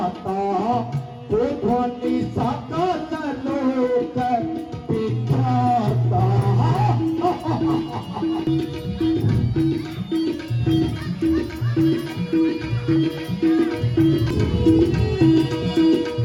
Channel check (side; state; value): both; identical; correlation 1.00